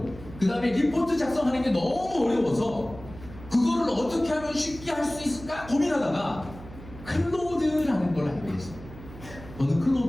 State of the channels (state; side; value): noise; right; hum, 16 dB below the sound